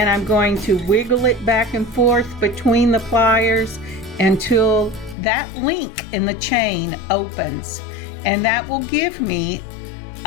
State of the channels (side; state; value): right; drops out; at 5.2 s